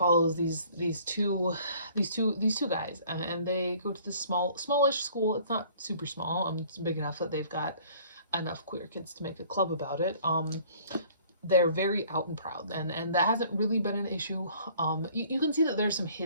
these two guys, and they go to this smallish school. It's not super small. It's big enough that they've got enough queer kids to make a club about it. They're very out and proud, and that hasn't really been an issue. You can see that there's some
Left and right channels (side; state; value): both; inverted; correlation -0.55